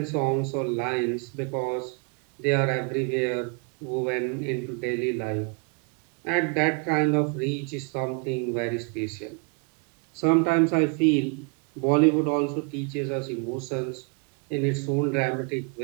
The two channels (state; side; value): quieter; left; 33.6 dB